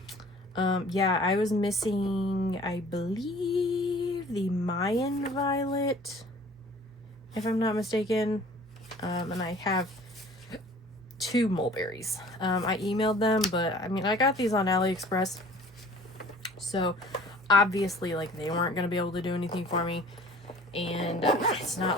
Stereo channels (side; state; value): both; normal; correlation 0.49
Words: Yeah, I was missing, I believe, the Mayan Violet, if I'm not mistaken. And I have 2 mulberries. I emailed them, but I mean, I got these on AliExpress, so obviously, like, they weren't going to be able to do anything for me. And it's not